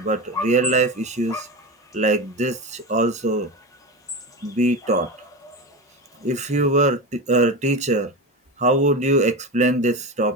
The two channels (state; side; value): normal; both; correlation 0.22